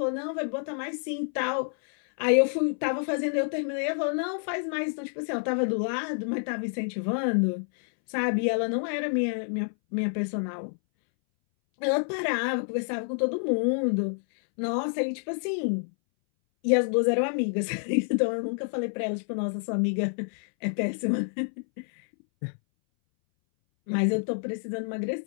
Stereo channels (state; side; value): silent; right; 59 dB below the other